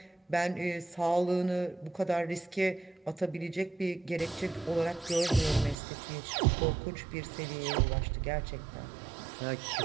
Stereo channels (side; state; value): left; drops out; at 5.8 s